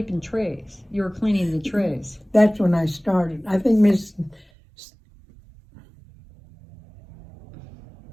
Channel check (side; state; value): left; drops out; at 4.5 s